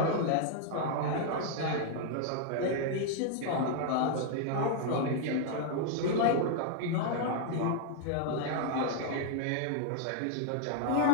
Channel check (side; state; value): both; different; correlation 0.00